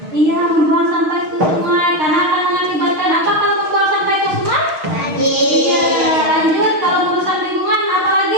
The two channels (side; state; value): left; late; 6.4 ms